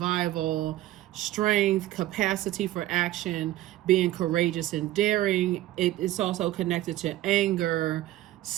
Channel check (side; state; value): left; quieter; 15.2 dB